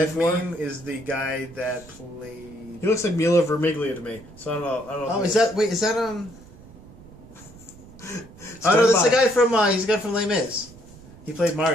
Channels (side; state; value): right; noise; rumble, 21 dB below the sound